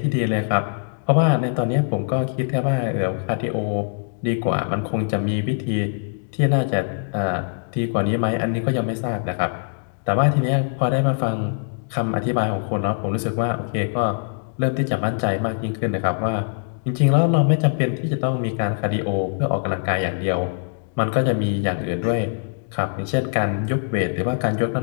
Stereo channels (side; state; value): right; silent; digital silence